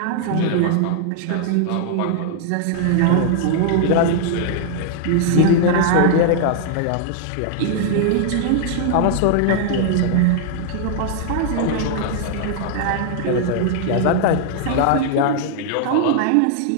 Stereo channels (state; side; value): different; both; correlation -0.01